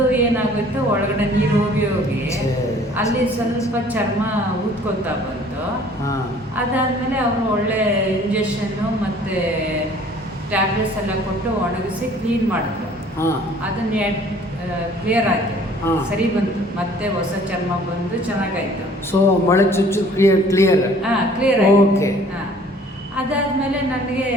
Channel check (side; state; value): both; normal; correlation 0.54